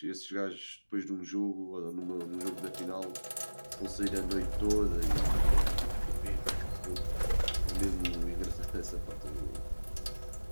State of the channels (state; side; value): inverted; both; correlation -1.00